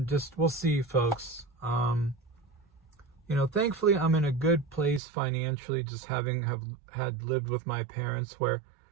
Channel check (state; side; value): drops out; left; at 5.0 s